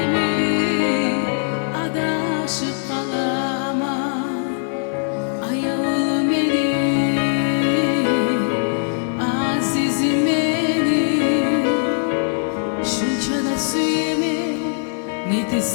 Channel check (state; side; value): silent; right; 56 dB below the other